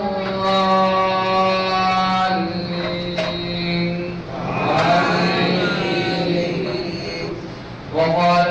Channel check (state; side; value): identical; both; correlation 1.00